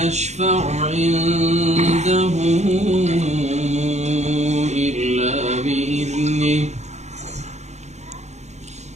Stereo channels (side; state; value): left; late; 0.33 ms